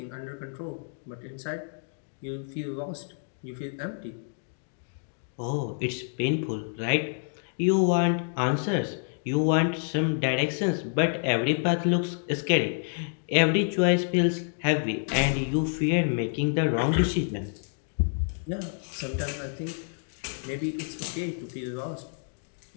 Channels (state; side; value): silent; right; digital silence